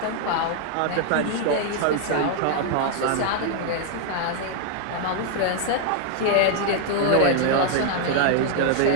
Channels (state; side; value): different; both; correlation 0.00